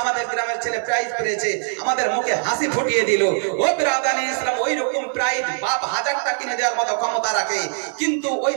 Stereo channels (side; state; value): left; silent; 57 dB below the other